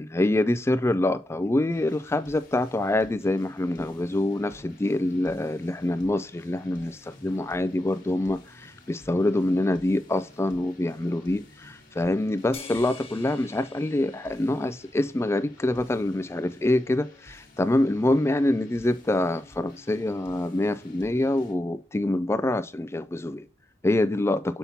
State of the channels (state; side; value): normal; both; correlation 0.88